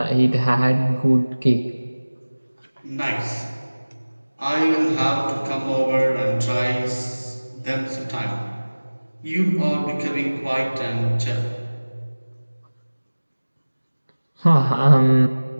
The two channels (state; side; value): inverted; both; correlation -1.00